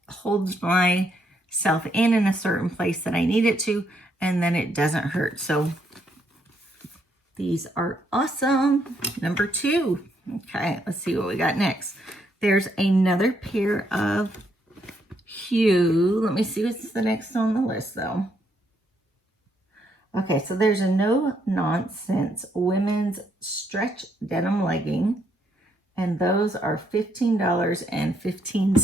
Holds myself in a certain place that I need it to, and then it doesn't hurt. So these are awesome. Number 2. Okay, let's see what we got next. There's another pair of Hue. Let me see what's the next on the list though. Okay, so there's a no nonsense women's stretch denim legging, And those are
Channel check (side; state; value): both; normal; correlation 0.74